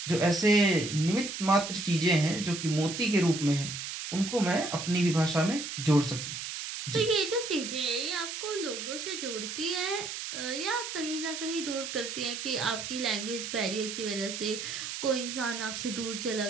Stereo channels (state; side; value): noise; right; hiss, 6 dB below the sound